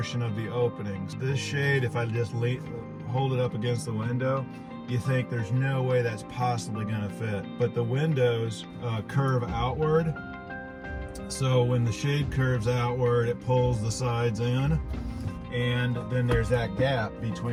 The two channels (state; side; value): identical; both; correlation 1.00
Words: of the openings. This shade, if I just hold it up against the window, you think there's no way that's possibly going to fit. But the windows curve outward, so when the shade curves outward, it pulls the sides in, and then there's that gap